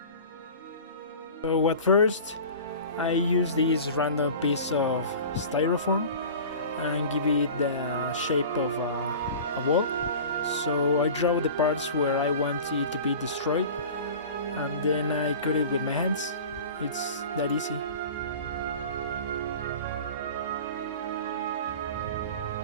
So at first, I use this random piece of styrofoam and give it the shape of a wall. So I draw the parts where I want it to be destroyed, and then I cut it with my hands. It's that easy.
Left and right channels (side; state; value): both; inverted; correlation -0.38